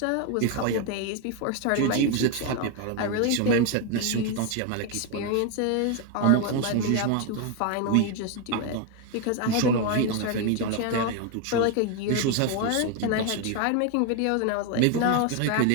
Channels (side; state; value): both; different; correlation 0.01